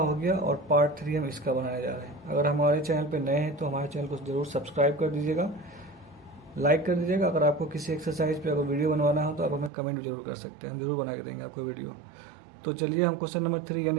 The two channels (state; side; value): drops out; left; at 9.7 s